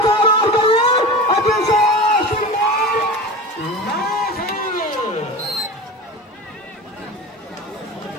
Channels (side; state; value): both; normal; correlation 0.30